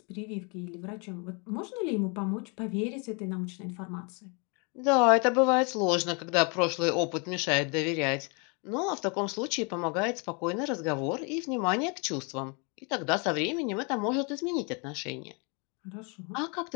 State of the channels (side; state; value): right; quieter; 33.3 dB